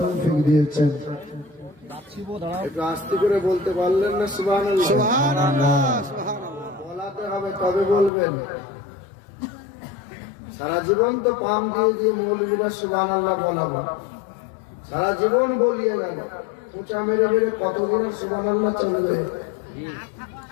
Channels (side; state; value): right; drops out; at 8.1 s